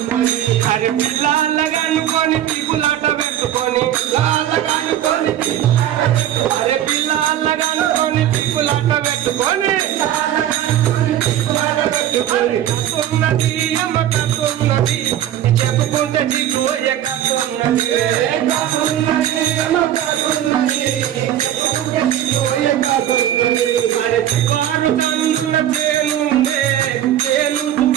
అరే పిల్లలగనుకొని పీపులాట పెట్టుకొని అరే పిల్లలగనుకొని పీపులాట పెట్టుకొని కాకున్నది అమ్మ కాకున్నది చెప్పుకుంటే చిగోయ కాకున్నది అరే చివారు కన్నుల తేనుండే తేను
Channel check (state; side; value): quieter; left; 11.5 dB